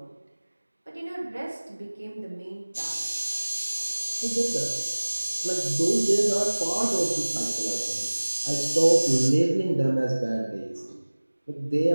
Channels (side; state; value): both; inverted; correlation -1.00